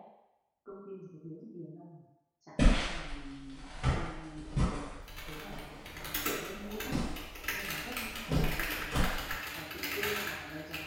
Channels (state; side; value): identical; both; correlation 1.00